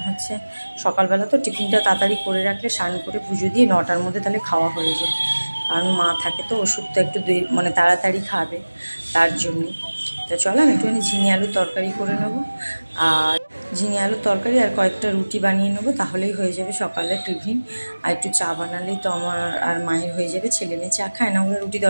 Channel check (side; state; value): both; inverted; correlation -1.00